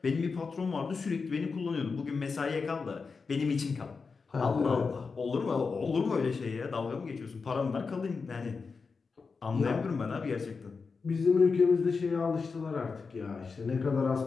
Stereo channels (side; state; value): right; quieter; 4.8 dB